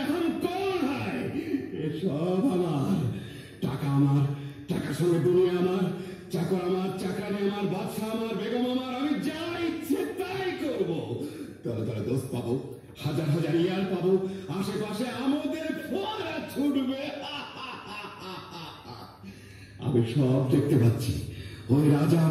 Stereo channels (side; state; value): both; identical; correlation 1.00